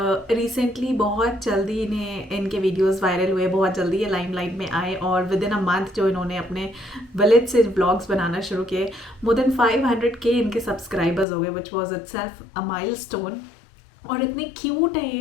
रिसेंटली बहुत जल्दी इनके वीडियोस वायरल हुए, बहुत जल्दी ये लाइमलाइट में आए और विद इन अ मंथ जो इन्होंने अपने विलेज से व्लॉग्स बनाना शुरू किए, मोर देन 500K इनके सब्सक्राइबर्स हो गए, which was itself a milestone. और इतने क्यूट हैं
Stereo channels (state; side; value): drops out; right; at 11.2 s